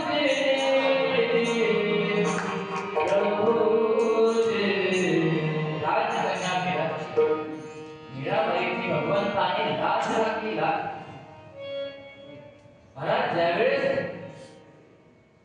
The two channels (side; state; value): both; identical; correlation 1.00